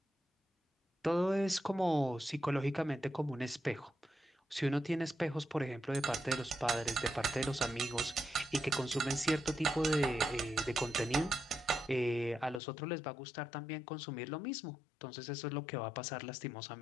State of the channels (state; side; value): drops out; right; at 12.6 s